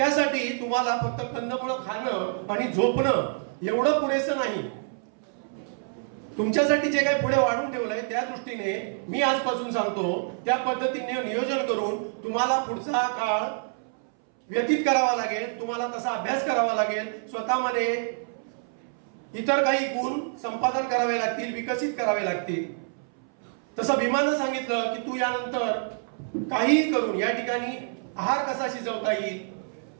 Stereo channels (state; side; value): silent; left; 60 dB below the other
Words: तुम्हाला फक्त कंदमुळं खाणं आणि झोपणं एवढं पुरेसं नाही. तुमच्यासाठी जे काही पुढे वाढून ठेवलंय त्या दृष्टीने मी आजपासून सांगतो त्या पद्धतीने नियोजन करून तुम्हाला पुढचा काळ व्यतीत करावा लागेल. तुम्हाला तसा अभ्यास करावा लागेल. स्वतःमध्ये इतर काही गुण संपादन करावे लागतील, विकसित करावे लागतील. तसं भीमानं सांगितलं की तू यानंतर काहीही करून या ठिकाणी आहार कसा शिजवता येईल